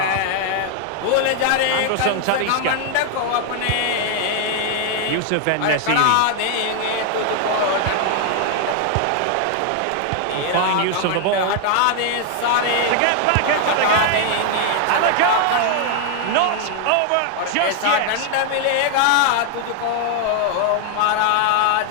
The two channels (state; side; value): different; both; correlation 0.00